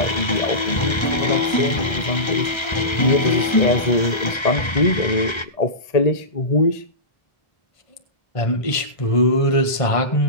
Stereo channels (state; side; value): late; right; 1.3 ms